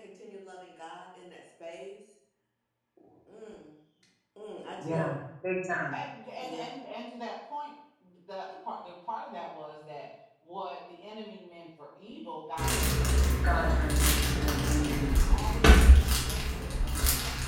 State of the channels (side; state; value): both; identical; correlation 1.00